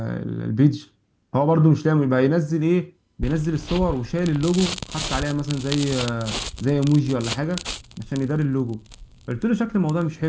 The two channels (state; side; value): identical; both; correlation 1.00